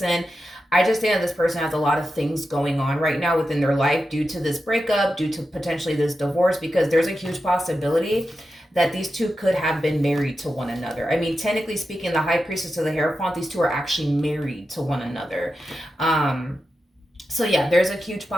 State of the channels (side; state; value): both; normal; correlation 0.90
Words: I just think that this person has a lot of things going on right now within their life due to this breakup, due to potentially this divorce, because there's a huge possibility that these two could have been married to one another. I mean, technically speaking, the High Priestess of the Hierophant, these two are actually married to one another. So yeah, there's a huge